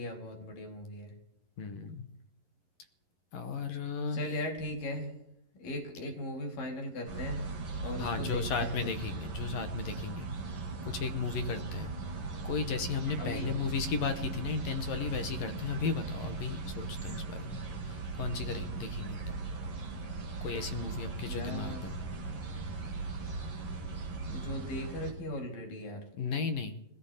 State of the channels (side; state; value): right; late; 11 ms